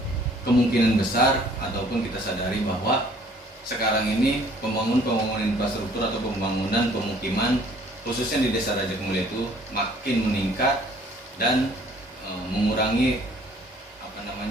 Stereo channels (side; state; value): both; normal; correlation 0.57